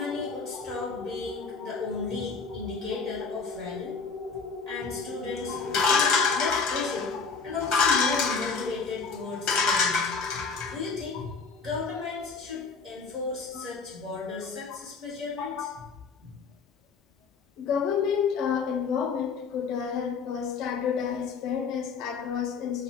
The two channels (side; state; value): right; quieter; 5.0 dB